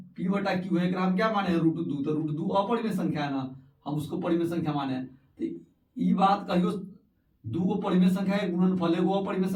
P बटा Q है। हम क्या माने हैं? √2। तो √2 अपरिमेय संख्या है ना, हम उसको परिमेय संख्या माने हैं। तो ई बात कहियो 2 को परिमेय संख्या है, गुणनफल एगो अपरिमेय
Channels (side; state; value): both; identical; correlation 1.00